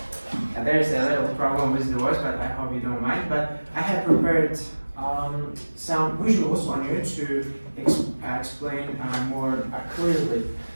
a little problem with the voice, but I hope you don't mind. But I have prepared some visuals on you to explain more clearly.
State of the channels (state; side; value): inverted; both; correlation -1.00